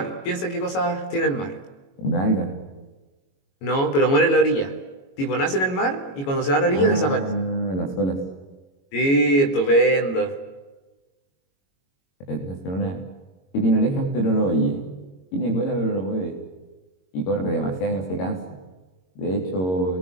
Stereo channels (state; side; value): late; right; 22 ms